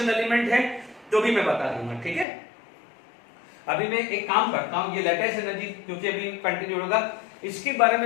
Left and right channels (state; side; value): drops out; right; at 2.2 s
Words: एलिमेंट है तो भी मैं बता दूंगा, ठीक है। अभी मैं एक काम करता हूं, ये लेटेस्ट एनर्जी क्योंकि अभी कंटिन्यू होगा, इसके बारे